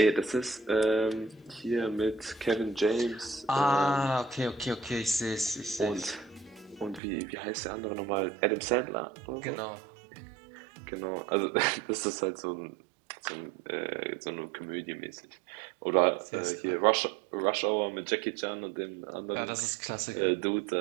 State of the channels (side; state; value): left; drops out; at 7.0 s